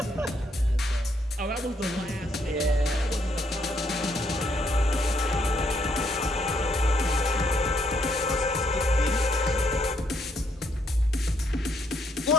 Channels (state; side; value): normal; both; correlation 0.73